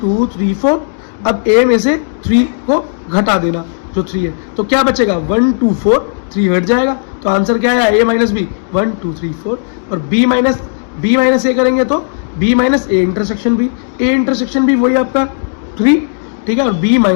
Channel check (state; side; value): silent; right; digital silence